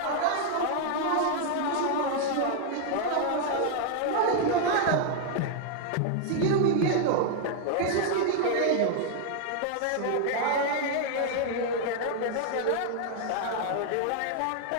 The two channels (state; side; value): different; both; correlation 0.00